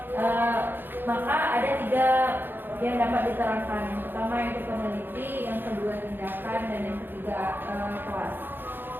Maka ada 3 yang dapat diterangkan. Yang pertama yaitu peneliti, yang kedua tindakan, dan yang ketiga kelas.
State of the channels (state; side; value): late; left; 0.097 ms